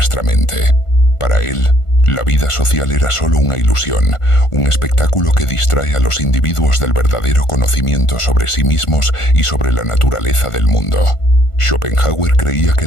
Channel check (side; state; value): right; late; 1.5 ms